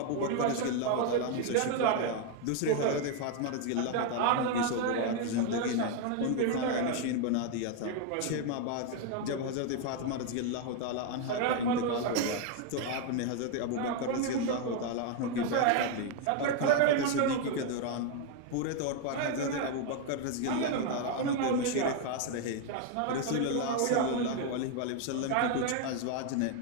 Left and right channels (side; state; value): both; different; correlation 0.01